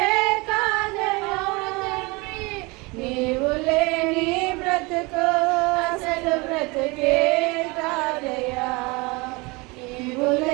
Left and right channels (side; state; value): left; quieter; 25.8 dB